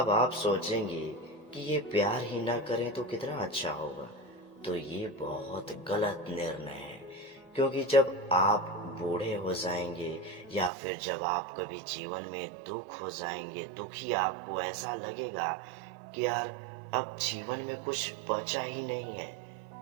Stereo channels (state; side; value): drops out; left; at 10.7 s